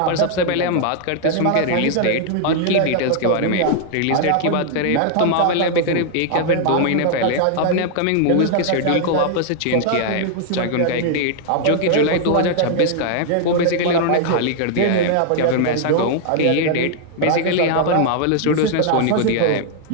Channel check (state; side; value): different; both; correlation 0.00